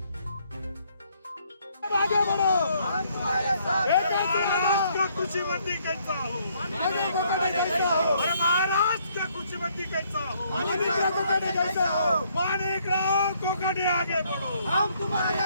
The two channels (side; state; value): both; inverted; correlation -0.68